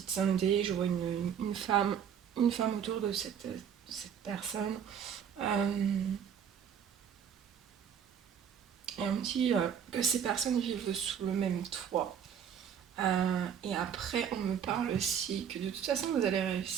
de santé. Je vois une femme autour de cette personne. Euh, et on me dit que ces personnes vivent sous le même toit. Et après, on me parle aussi que de toute façon, vous allez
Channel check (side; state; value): left; quieter; 8.2 dB